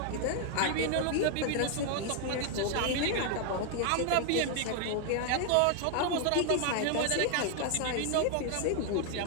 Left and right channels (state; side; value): different; both; correlation 0.00